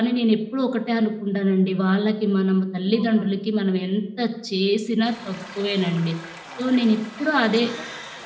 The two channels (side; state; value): both; identical; correlation 1.00